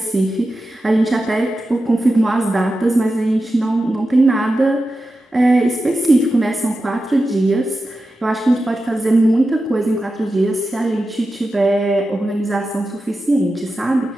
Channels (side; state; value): both; normal; correlation 0.92